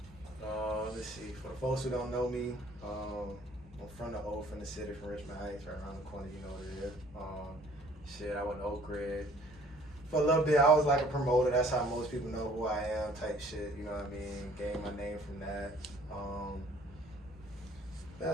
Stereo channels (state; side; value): normal; both; correlation 0.56